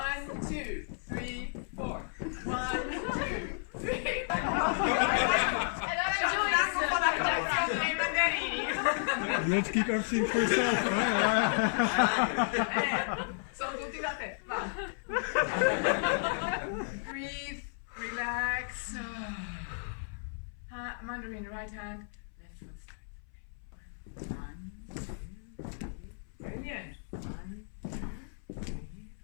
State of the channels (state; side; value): silent; right; 56 dB below the other